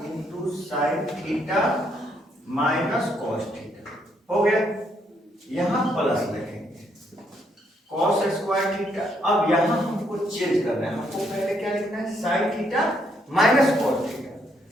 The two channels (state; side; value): normal; both; correlation 0.73